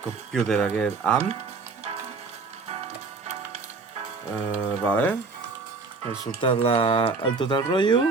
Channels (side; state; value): left; quieter; 4.2 dB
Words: aquest AM. Vale. He soltat el tot el rotllo.